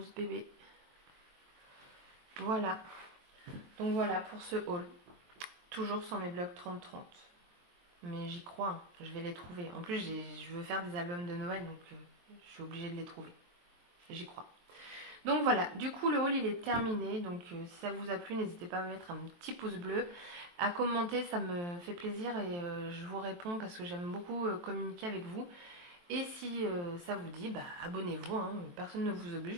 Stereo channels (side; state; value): left; late; 23 ms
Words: bébé. Voilà. Donc voilà pour ce haul. Toujours sur mes blocs 30-30. Mais j'y crois, hein. Je vais les trouver. En plus, je veux faire des albums de Noël, donc je suis obligée de les trouver. J'y crois. Donc voilà, du coup le haul il est terminé. Donc si ça vous a plu, n'hésitez pas à me mettre un petit pouce bleu, à commenter, ça me fait plaisir et je vous réponds parce que j'aime beaucoup communiquer avec vous. Et si ça vous dit, bah abonnez-vous, hein. Personne ne vous